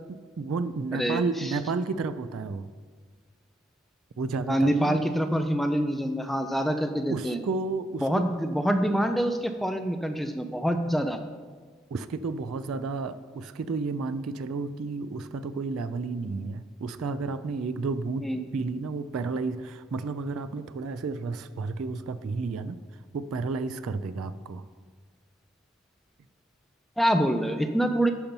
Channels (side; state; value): both; normal; correlation 0.77